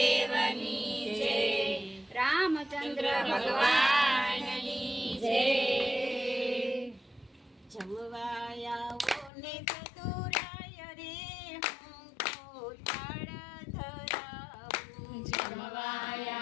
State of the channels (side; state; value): right; drops out; at 9.3 s